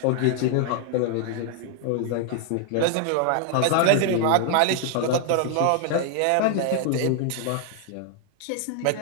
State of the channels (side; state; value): both; different; correlation 0.00